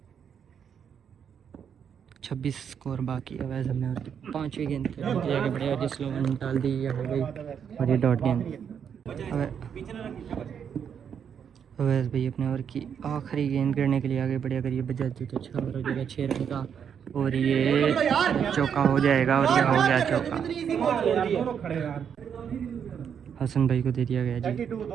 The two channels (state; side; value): quieter; left; 7.8 dB